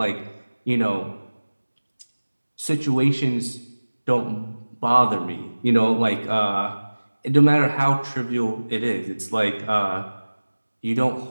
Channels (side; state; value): both; inverted; correlation -1.00